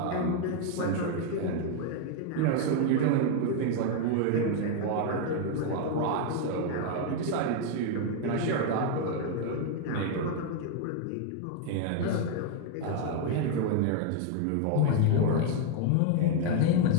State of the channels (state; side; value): different; both; correlation 0.00